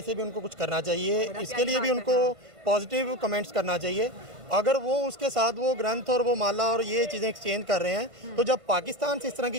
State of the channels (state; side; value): late; left; 1.4 ms